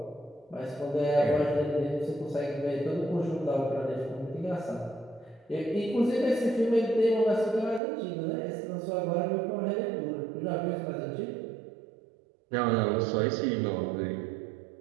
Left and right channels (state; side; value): drops out; left; at 7.8 s